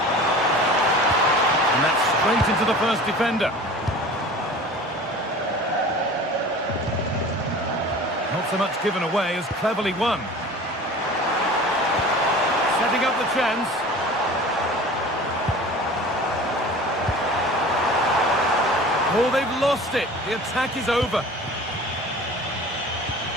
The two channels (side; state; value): both; normal; correlation 0.40